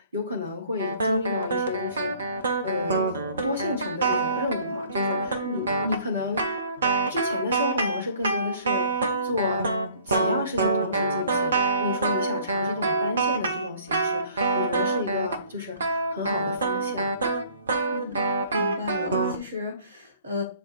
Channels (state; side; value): inverted; both; correlation -0.55